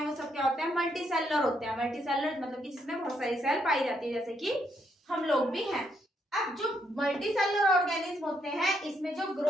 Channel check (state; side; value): normal; both; correlation 0.75